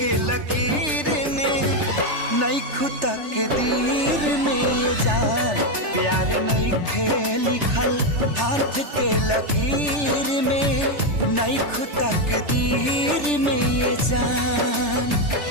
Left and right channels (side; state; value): left; late; 3.3 ms